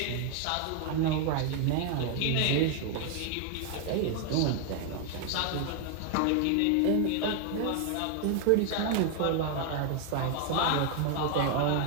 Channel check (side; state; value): both; different; correlation 0.00